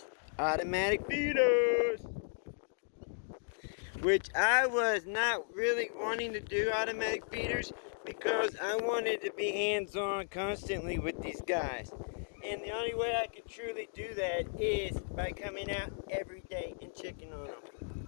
automatic feeders. Which I was not really wanting to do automatic feeders because I wanted to be hands-on constantly with these guys. And the only way I can truly do that is by coming out every day and checking on them.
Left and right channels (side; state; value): right; silent; digital silence